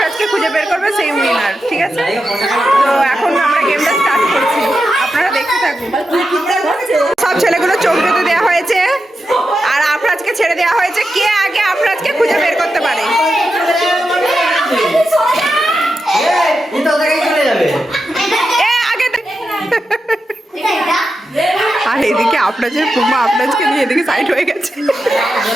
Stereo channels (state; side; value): normal; both; correlation 0.89